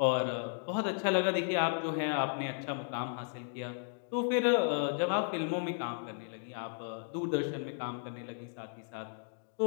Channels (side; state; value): right; silent; digital silence